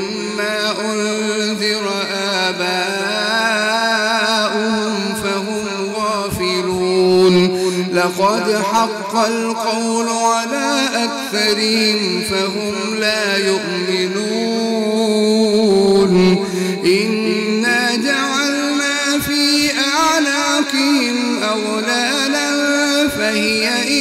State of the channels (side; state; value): both; identical; correlation 1.00